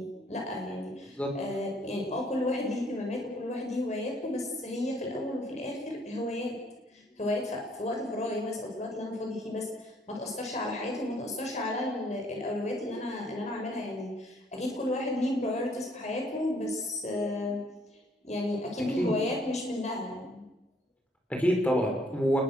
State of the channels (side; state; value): both; normal; correlation 0.64